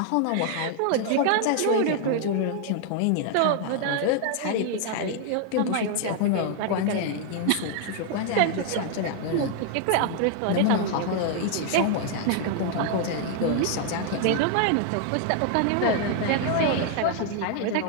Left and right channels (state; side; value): different; both; correlation 0.00